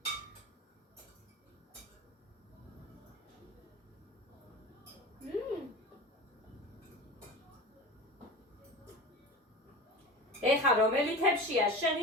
ეხა რომელი თებშია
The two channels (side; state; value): both; normal; correlation 0.31